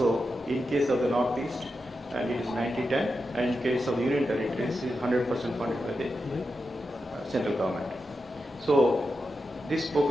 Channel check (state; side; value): normal; both; correlation 0.89